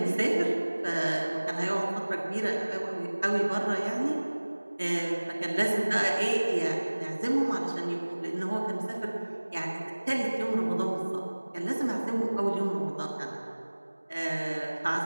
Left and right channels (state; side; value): inverted; both; correlation -1.00